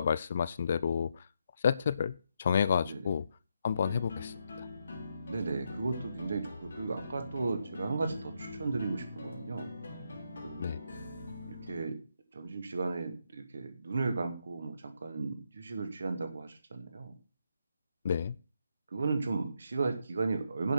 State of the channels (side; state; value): both; inverted; correlation -0.80